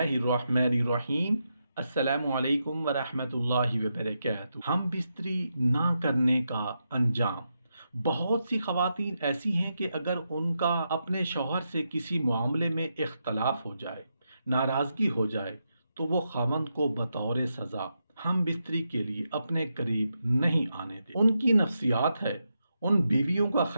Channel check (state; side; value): inverted; both; correlation -0.85